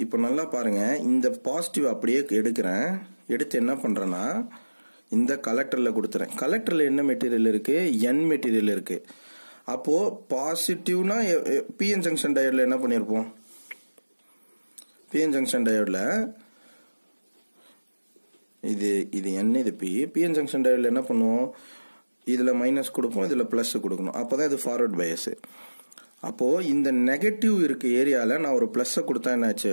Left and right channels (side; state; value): both; inverted; correlation -1.00